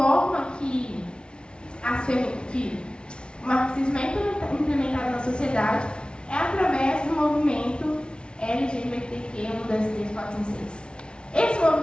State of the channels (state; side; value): late; right; 0.056 ms